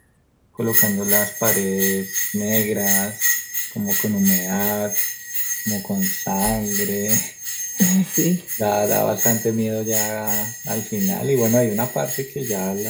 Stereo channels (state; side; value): identical; both; correlation 1.00